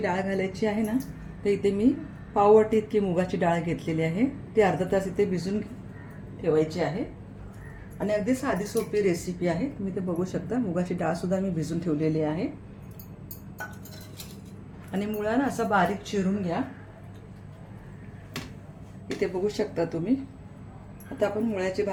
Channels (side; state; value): both; identical; correlation 1.00